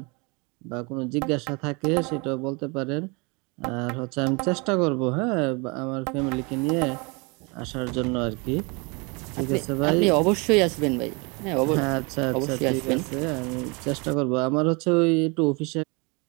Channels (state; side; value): quieter; left; 29.8 dB